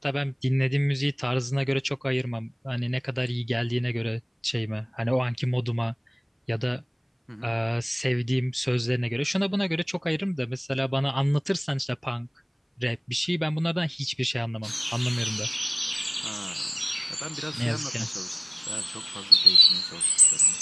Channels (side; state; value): both; identical; correlation 1.00